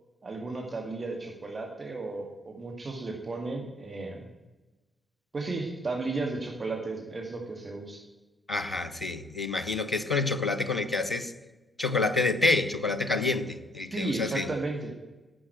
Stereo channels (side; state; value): both; normal; correlation 0.62